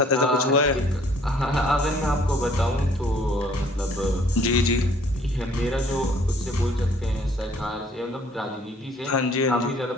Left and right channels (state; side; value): normal; both; correlation 0.59